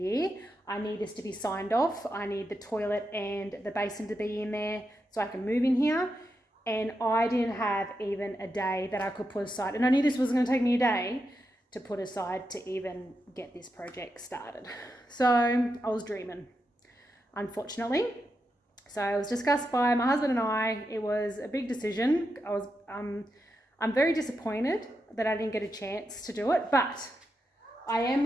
I need this to be signed off. I need the toilet and the basin to be in there so I can move in here. And I didn't have even a day that I could put aside. And I knew this was going to take me a day to put aside to even get this project started. So I was dreaming, unfortunately. So it was discussed by my husband and I. It was a big decision. I'm very disappointed that I didn't get a chance to do it, but I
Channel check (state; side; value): normal; both; correlation 0.86